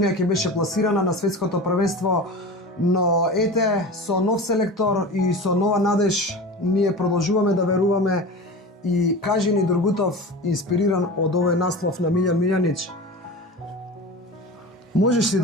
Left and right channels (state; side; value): normal; both; correlation 0.31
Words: ќе беше пласирана на светското првенство, но ете, со нов селектор и со нова надеж, ние продолжуваме да веруваме и кажи ни Durgutov, инспириран од овој наслов на Милјан Милјанич, можеш ли